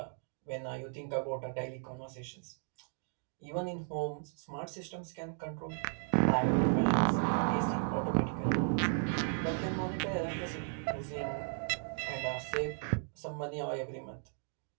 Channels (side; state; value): left; silent; 54 dB below the other